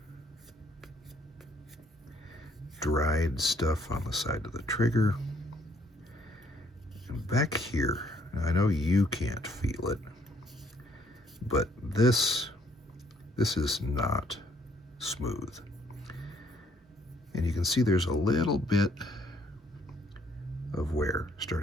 Dried stuff on the side of the trigger. And back here, I know you can't feel it, but this is not smooth. And you can see there's a little bit of wear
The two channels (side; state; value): both; normal; correlation 0.66